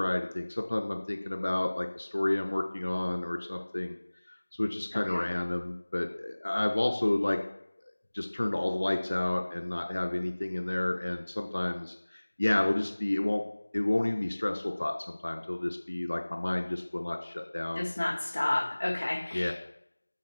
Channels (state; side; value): inverted; both; correlation -1.00